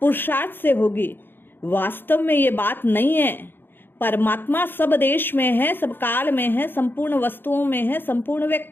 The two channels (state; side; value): late; right; 0.10 ms